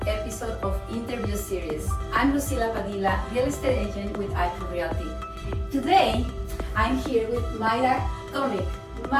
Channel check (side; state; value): both; identical; correlation 1.00